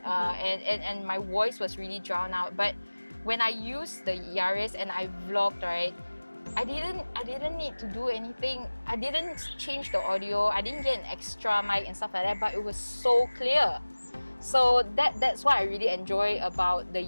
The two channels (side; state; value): both; inverted; correlation -1.00